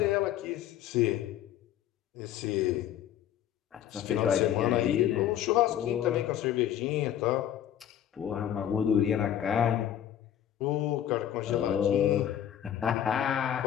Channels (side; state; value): right; quieter; 10.7 dB